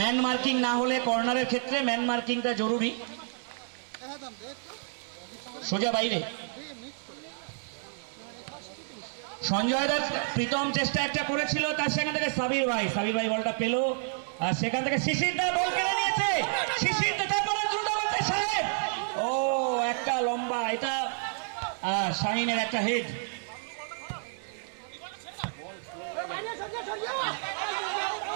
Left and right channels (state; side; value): silent; left; 58 dB below the other